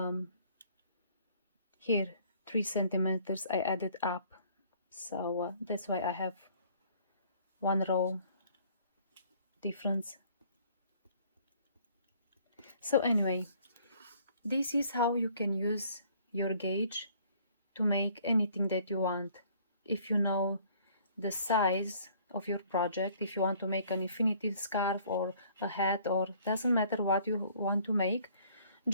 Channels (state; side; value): inverted; both; correlation -0.58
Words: here 3 centimeters I added up, so that's why I have 1 row difference. So anyway, this is how you can use your gauge to make anything that you want. If you know the size of your project, if you want to make an infinity scarf or a hat, or doesn't matter what you want to make,